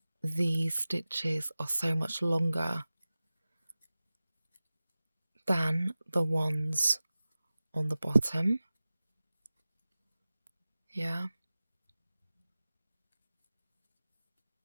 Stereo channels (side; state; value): both; inverted; correlation -0.97